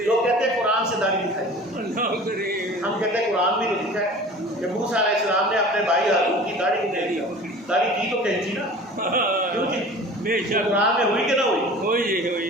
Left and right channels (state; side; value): normal; both; correlation 0.41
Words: لوگ کہتے ہیں قرآن سے داڑھی دکھائی، اللہ کریم. ہم کہتے ہیں قرآن بھی تو لکھا ہے کہ موسیٰ علیہ السلام نے اپنے بھائی ہارون کی داڑھی کو دے دیا. داڑھی کی تو کینچی نا، کیوں جی؟ بے شک قرآن میں ہوئی کہ نہ ہوئی؟